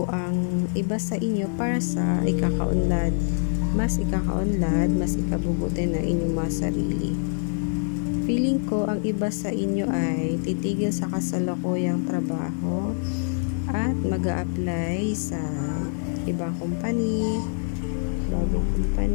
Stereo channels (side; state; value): right; silent; digital silence